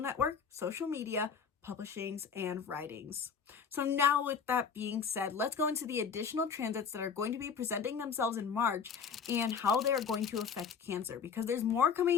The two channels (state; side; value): quieter; right; 6.4 dB